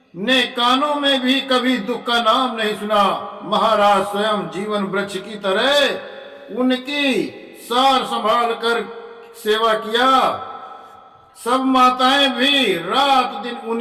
ने कानों में भी कभी दुख का नाम नहीं सुना। महाराज स्वयं जीवन वृक्ष की तरह उनकी सार संभाल कर सेवा किया। सब माताएं भी रात दिन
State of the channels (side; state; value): both; identical; correlation 1.00